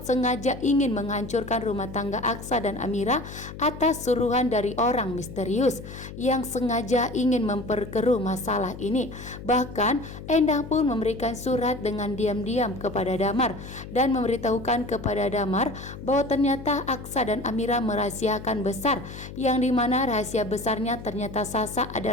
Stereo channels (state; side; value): noise; left; hum, 12 dB below the sound